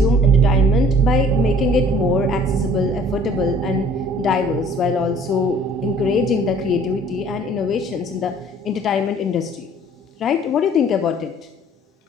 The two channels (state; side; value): normal; both; correlation 0.53